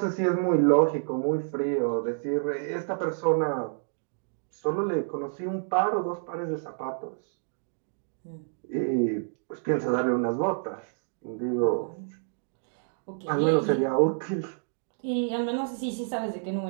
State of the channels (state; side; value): silent; left; digital silence